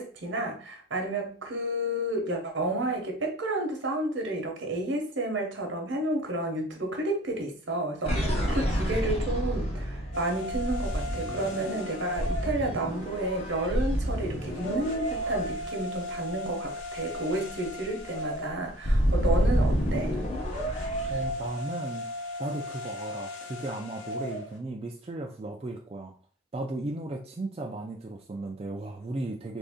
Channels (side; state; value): both; normal; correlation 0.44